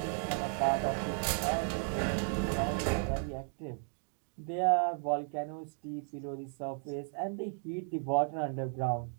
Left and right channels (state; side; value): silent; left; 55 dB below the other